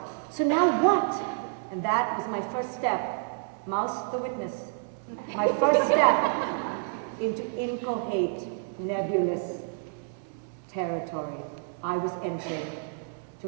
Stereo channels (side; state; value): left; silent; 59 dB below the other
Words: So now what? And that was my first step. Mouse the witness. My first step into incoherent, nebulous territory. I was entering